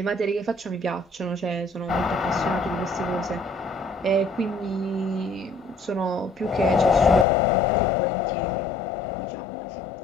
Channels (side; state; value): right; drops out; at 7.2 s